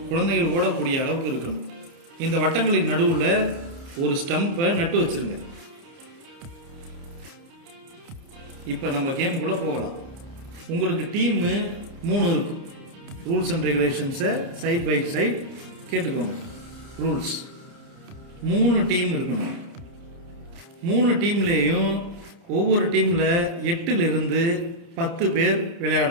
குழந்தைகள் ஓடக்கூடிய அளவுக்கு இருக்கணும். இந்த வட்டங்களின் நடுவில் ஒரு ஸ்டம்பை நட்டு வச்சிருங்க. இப்போ நம்ம கேமுக்குள்ளே போகலாம். உங்களுக்கு டீமு 3 இருக்கும். ரூல்ஸ் அண்ட் ரெகுலேஷன்ஸை சைட் பை சைட் கேட்டுக்கோங்க. ரூல்ஸ் 3 டீம் இருக்கணும். 3 டீம்லேயும் ஒவ்வொரு டீமில் 8லிருந்து 10 பேர்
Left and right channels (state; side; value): late; left; 30 ms